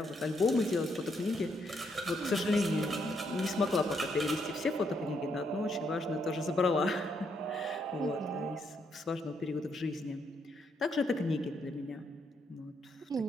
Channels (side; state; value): both; normal; correlation 0.75